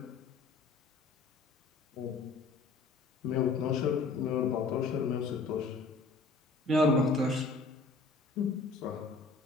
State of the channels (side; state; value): right; quieter; 3.8 dB